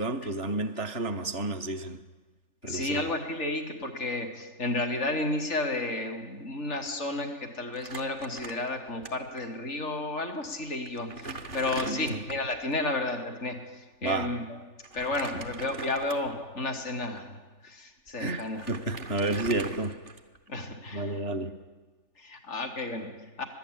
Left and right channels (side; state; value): right; late; 3.4 ms